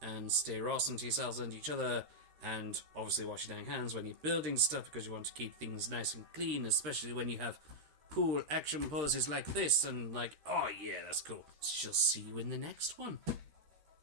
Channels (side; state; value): left; late; 13 ms